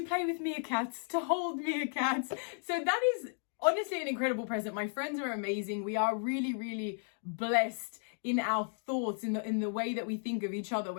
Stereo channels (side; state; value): right; silent; 55 dB below the other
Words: play with meerkats, to hold meerkats. So that is honestly an incredible present. My friends are amazing. We are really, really blessed in our thoughts, in the way that we think of each other